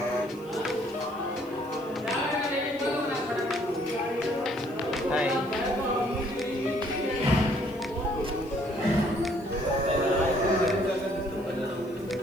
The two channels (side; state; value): left; noise; hiss, 27 dB below the sound